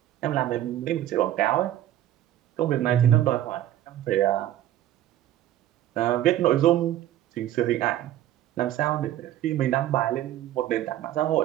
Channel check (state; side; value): quieter; left; 12.9 dB